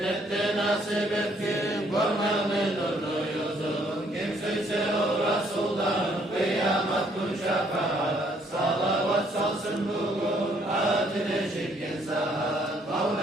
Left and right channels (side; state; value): both; normal; correlation 0.66